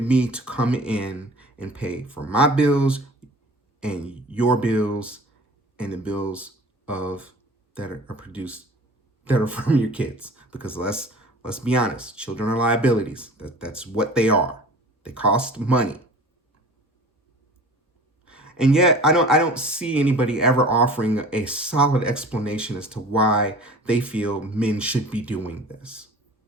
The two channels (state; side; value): normal; both; correlation 0.43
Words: me to come in and pay for my bills and your bills and the bills that are produced that are from your kids. Because let's be honest, children are liabilities. That's what they are. They cost money. And yet I don't see anybody ever offering a solid explanation as to why they feel men should be doing this.